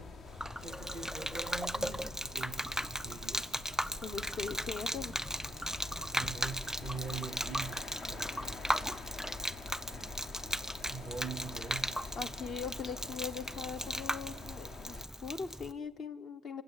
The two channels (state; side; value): normal; both; correlation 0.75